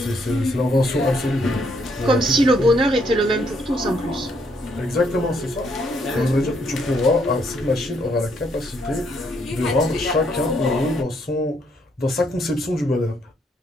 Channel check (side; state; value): both; normal; correlation 0.71